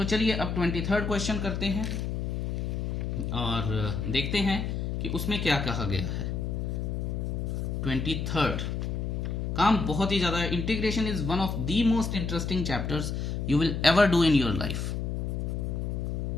चलिए अब 23rd क्वेश्चन करते हैं और देखते हैं कि उसमें क्या कहा गया है। 23rd काम बहुत ही ज्यादा, integration is one of the most interesting chapters you will ever do in your life.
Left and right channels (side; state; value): left; noise; hum, 2 dB below the sound